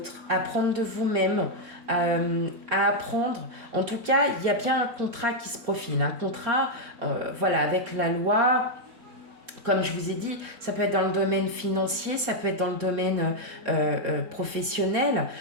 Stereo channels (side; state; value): left; late; 4.3 ms